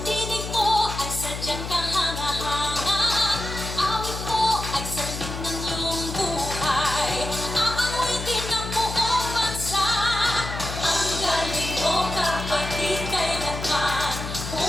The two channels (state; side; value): noise; left; hum, 7 dB below the sound